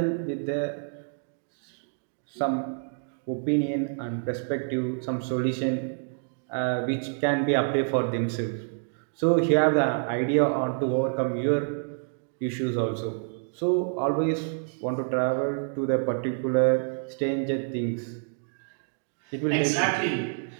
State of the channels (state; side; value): silent; left; digital silence